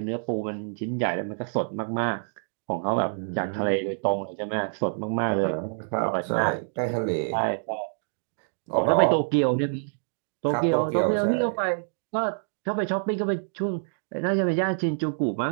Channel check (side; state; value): left; silent; digital silence